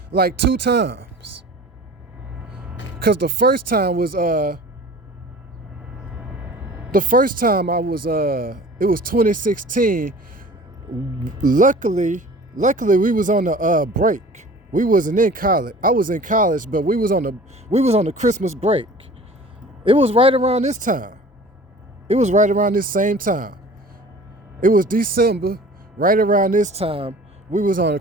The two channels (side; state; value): both; normal; correlation 0.44